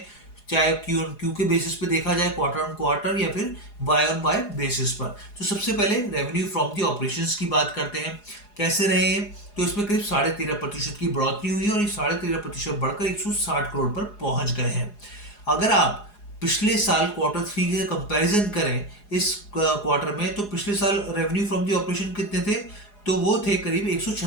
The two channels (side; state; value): right; late; 4.8 ms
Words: चाहे क्यू ऑन क्यू के बेसिस पे देखा जाए, क्वार्टर ऑन क्वार्टर या फिर वाई ऑन वाई बेसिस पर। तो सबसे पहले रेवेन्यू फ्रॉम दी ऑपरेशंस की बात करते हैं, कैसे रहे हैं। तो इसमें करीब 13.5% की बढ़ोतरी हुई और ये 13.5% बढ़कर 160 करोड़ पर पहुंच गए हैं। अगर आप पिछले साल क्वार्टर 3 के कंपैरिजन करें इस क्वार्टर में, तो पिछले साल रेवेन्यू फ्रॉम दी ऑपरेशन कितने थे, तो वो थे करीब